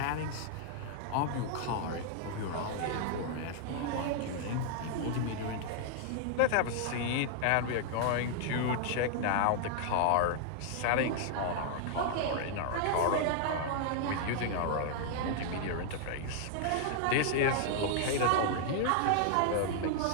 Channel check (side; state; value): both; different; correlation 0.00